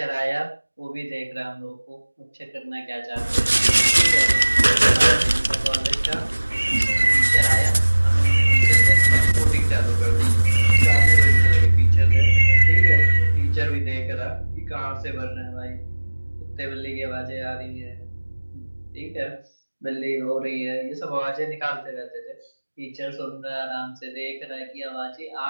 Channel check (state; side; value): inverted; both; correlation -1.00